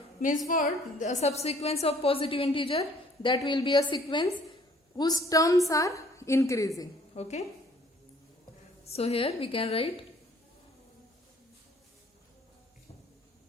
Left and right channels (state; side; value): normal; both; correlation 0.58